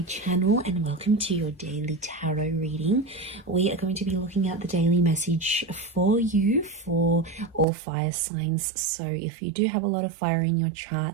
channel and welcome to your daily tarot reading. We are going to be looking at the daily message for you for all fire signs. So if you do have a lot of fire in your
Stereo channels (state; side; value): drops out; left; at 7.7 s